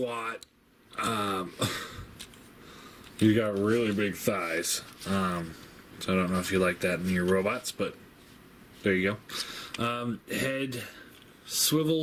He's got really big thighs. So I don't know if you like that in your robots, but there you go. Head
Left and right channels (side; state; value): both; identical; correlation 1.00